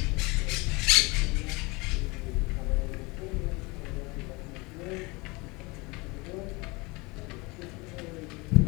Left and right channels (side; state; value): right; quieter; 25.7 dB